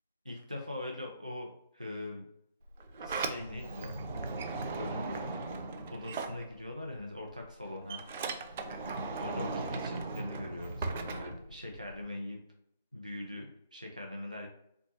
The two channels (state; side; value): inverted; both; correlation -0.65